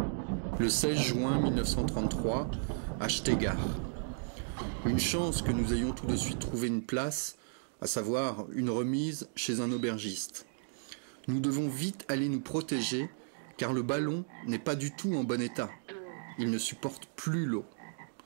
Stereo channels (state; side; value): silent; left; digital silence